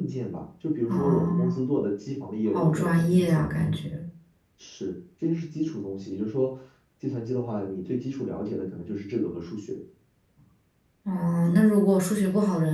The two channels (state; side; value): identical; both; correlation 1.00